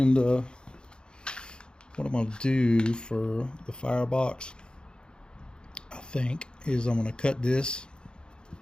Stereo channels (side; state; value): right; late; 0.049 ms